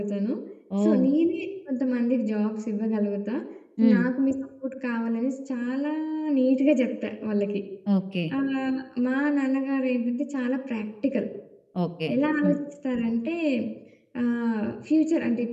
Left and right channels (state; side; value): identical; both; correlation 1.00